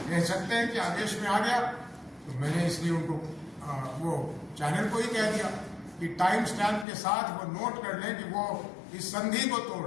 कह सकते हैं कि आदेश में आ गया, तो मैंने इसलिए उनको वो चैनल को ही कह दिया कि टाइम स्टैम्प के साथ वो नोट कर लें कि वो इस संधि को तोड़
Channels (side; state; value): right; drops out; at 6.9 s